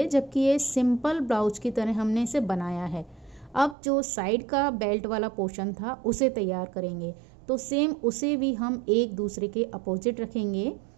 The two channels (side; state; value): left; drops out; at 3.8 s